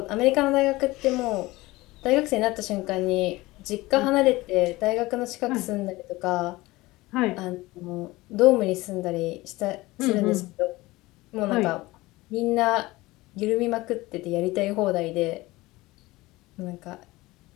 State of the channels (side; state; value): right; quieter; 20.1 dB